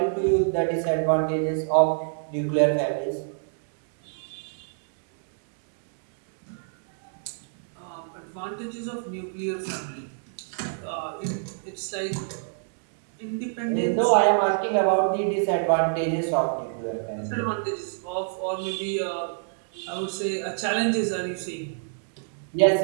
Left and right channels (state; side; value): silent; left; digital silence